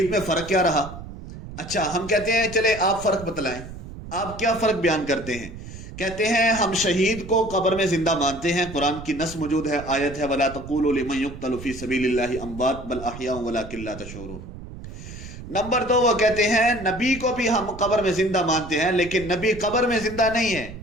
میں فرق کیا رہا؟ اچھا، ہم کہتے ہیں چلے آپ فرق بتلائیں، آپ کیا فرق بیان کرتے ہیں؟ کہتے ہیں ہم شہید کو قبر میں زندہ مانتے ہیں، قرآن کی نص موجود ہے، آیت ہے وَلَا تَقُولُوا لِمَن يُقْتَلُ فِي سَبِيلِ اللَّهِ أَمْوَاتٌ بَلْ أَحْيَاءٌ وَلَكِن لَا تَشْعُرُونَ. نمبر دو، وہ کہتے ہیں نبی کو بھی ہم قبر میں زندہ مانتے ہیں، لیکن نبی قبر میں زندہ نہیں ہے،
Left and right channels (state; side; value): noise; right; rumble, 12 dB below the sound